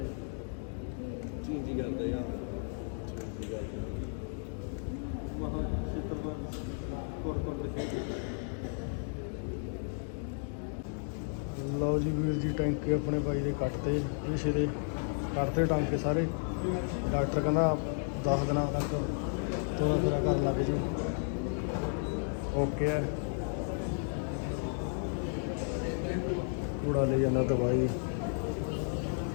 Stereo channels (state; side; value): silent; right; 55 dB below the other